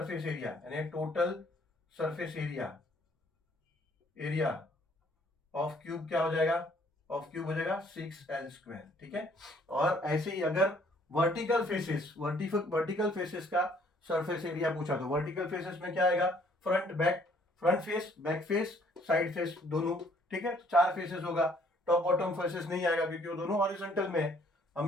एरिया यानी total surface area area of cube क्या हो जाएगा, ऑफ क्यूब हो जाएगा 6l स्क्वायर, ठीक है। और ऐसे ही अगर वर्टिकल फेसेस, वर्टिकल फेसेस का सरफेस एरिया पूछा तो वर्टिकल फेसेस में क्या आएगा, front back, front face back face side face दोनों, ठीक है, 4 फेसेस होगा, टॉप बॉटम फेसेस नहीं आएगा क्योंकि वो दोनों हॉरिजॉन्टल में है,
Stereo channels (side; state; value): both; normal; correlation 0.62